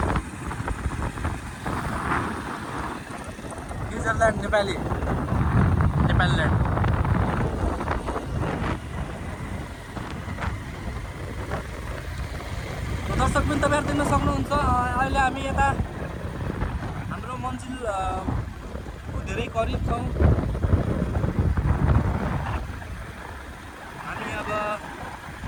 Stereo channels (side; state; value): both; identical; correlation 1.00